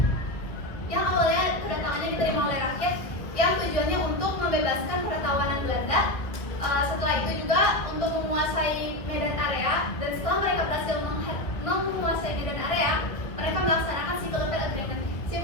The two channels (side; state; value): right; late; 1.5 ms